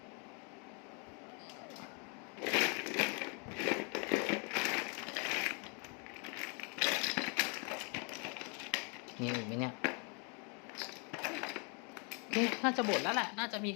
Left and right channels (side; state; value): right; quieter; 35.6 dB